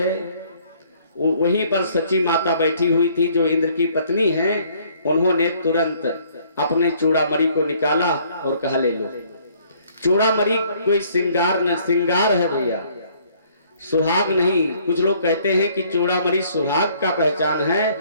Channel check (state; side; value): inverted; both; correlation -0.61